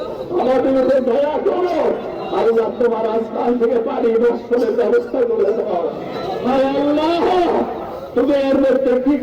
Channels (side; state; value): both; identical; correlation 1.00